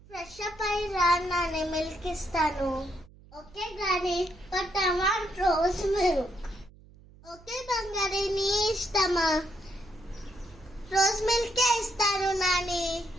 Fresh up అయి రా Nani, milk ఇస్తాను. ఓకే గాని, but I want rose milk. Okay బంగారి, నీ ఇష్టమా? రోజ్ మిల్కే ఇస్తాను Nani.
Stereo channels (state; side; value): noise; right; hum, 24 dB below the sound